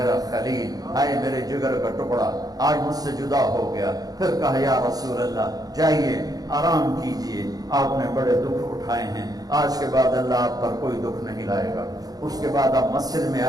خلیل، اے میرے جگر کا ٹکڑا، آج مجھ سے جدا ہو گیا. پھر کہا یا رسول اللہ جائیے آرام کیجئے، آپ نے بڑے دکھ اٹھائے ہیں، آج کے بعد اللہ آپ پر کوئی دکھ نہیں لائے گا. اس کے بعد آپ مسجد میں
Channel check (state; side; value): late; left; 0.18 ms